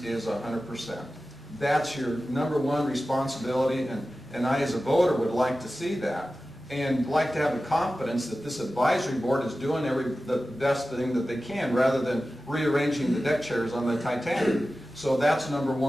is 100%. That's your number one responsibility, and I as a voter would like to see that, and like to have the confidence that this advisory board is doing the best thing that they can rather than rearranging the deck chairs on the Titanic. So that's number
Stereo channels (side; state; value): both; normal; correlation 0.95